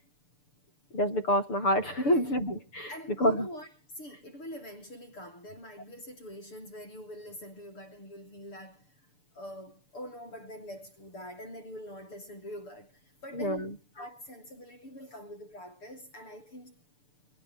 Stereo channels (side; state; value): right; late; 6.8 ms